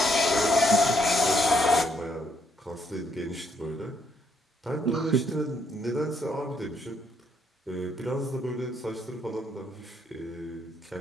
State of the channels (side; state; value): both; normal; correlation 0.72